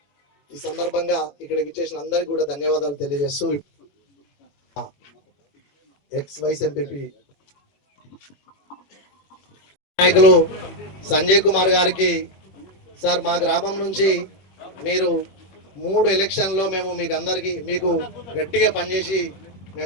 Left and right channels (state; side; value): late; right; 21 ms